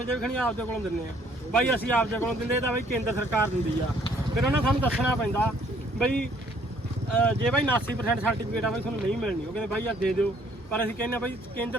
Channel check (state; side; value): normal; both; correlation 0.62